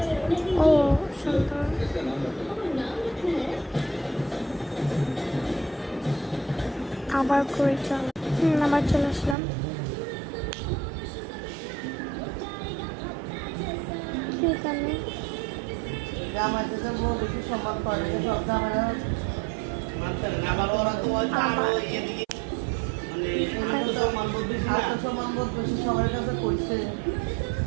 ও সুন্দর, আবার করে চল। আবার চলে আসলাম। এখানে জামাইকে যে বেশি সম্মান করে সব জামাইরা আত্মসম্মানবোধ বেশি সবার কাছে করছে।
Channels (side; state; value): left; drops out; at 9.3 s